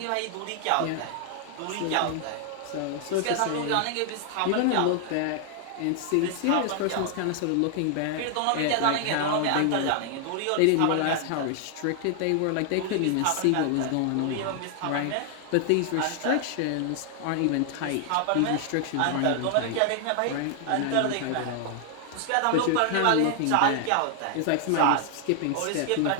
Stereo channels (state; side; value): different; both; correlation 0.00